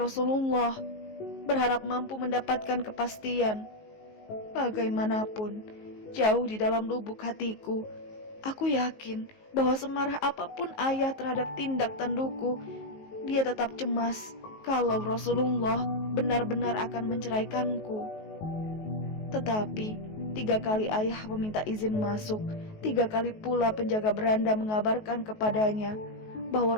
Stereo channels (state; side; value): late; right; 19 ms